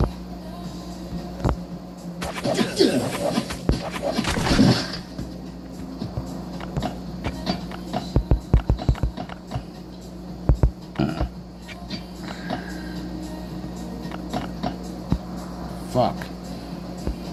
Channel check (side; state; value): both; identical; correlation 1.00